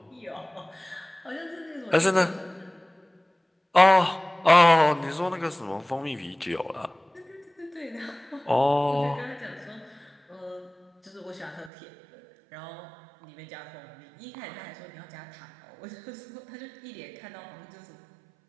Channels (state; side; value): drops out; left; at 11.7 s